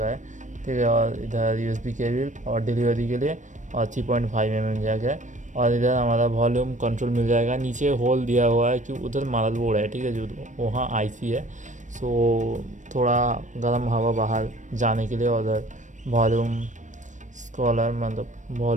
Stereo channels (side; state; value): left; late; 0.36 ms